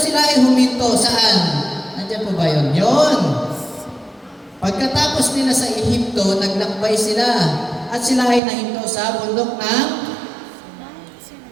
ay huminto. Saan? Nandiyan po ba yun? Yun. Pagkatapos nila sa Ehipto, naglakbay sila. At sila ay nahinto sa bundok ng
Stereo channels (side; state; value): left; drops out; at 8.4 s